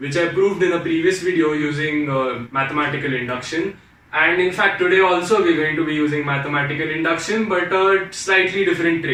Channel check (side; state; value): both; identical; correlation 1.00